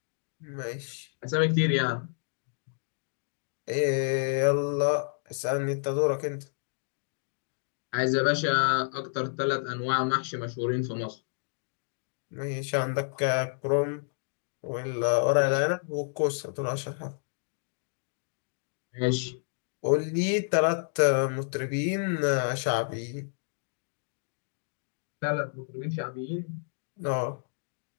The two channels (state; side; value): silent; right; digital silence